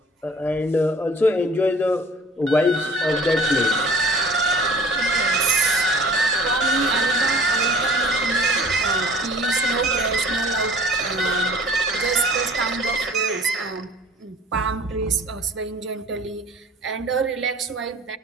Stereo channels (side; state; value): both; normal; correlation 0.49